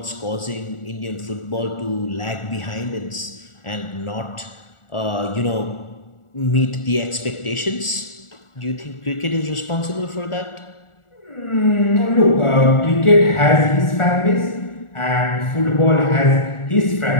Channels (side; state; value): right; late; 1.4 ms